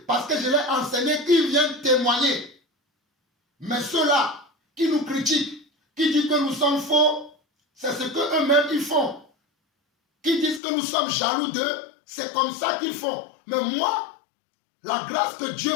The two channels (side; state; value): right; drops out; at 10.6 s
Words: parce que je l'ai enseigné, qui viennent témoigner. Mais ceux-là qui nous critiquent, qui disent que nous sommes faux, c'est ce qu'eux-mêmes ils font. Qui disent que nous sommes jaloux d'eux, c'est comme ça qu'ils font. Mais moi, la grâce que